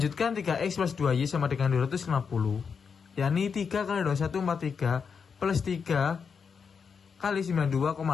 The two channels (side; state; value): right; quieter; 6.1 dB